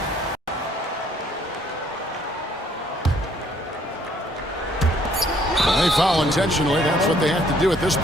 They foul intentionally. That's what they have to do at this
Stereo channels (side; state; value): both; normal; correlation 0.63